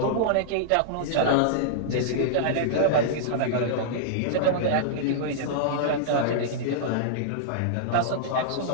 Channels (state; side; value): different; both; correlation -0.02